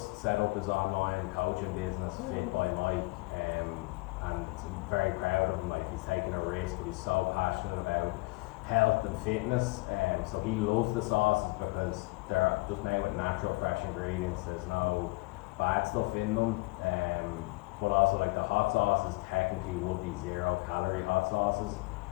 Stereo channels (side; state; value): right; quieter; 24.7 dB